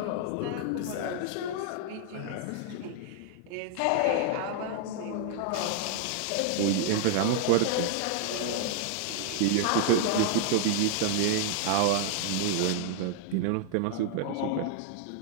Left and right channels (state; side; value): different; both; correlation 0.00